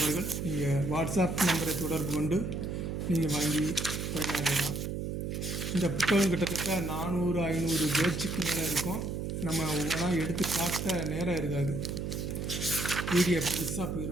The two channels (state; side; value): noise; right; hum, 3 dB below the sound